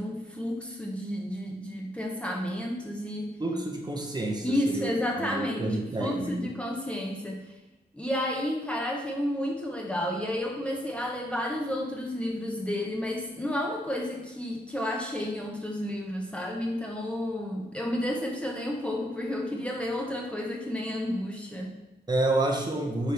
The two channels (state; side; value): normal; both; correlation 0.75